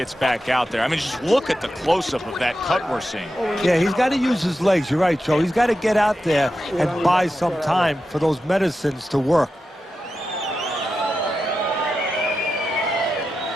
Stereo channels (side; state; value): both; normal; correlation 0.90